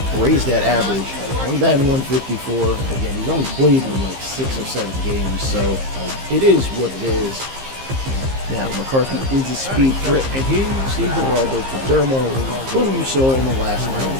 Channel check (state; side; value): late; left; 15 ms